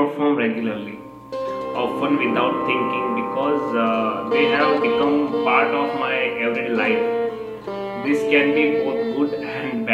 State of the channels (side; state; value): both; identical; correlation 1.00